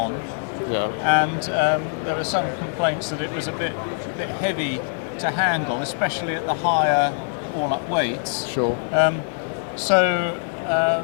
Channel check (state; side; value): silent; right; 63 dB below the other